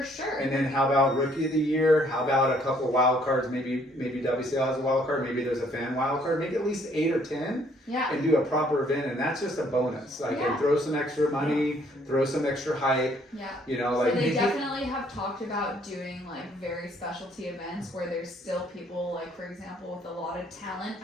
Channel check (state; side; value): normal; both; correlation 0.64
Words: sure. And then how about Rookie of the Year? How about a couple of wild cards? Maybe WCL has a wild card. Maybe there's a fan wild card. Maybe at least 8 or 10. and do a proper event, and that's just a bonus. Like, and throw some extra money, throw some extra hype. Yeah. You know, So like they definitely have talked about doing like very specialty events where there's still people, like for example, with a lot of talent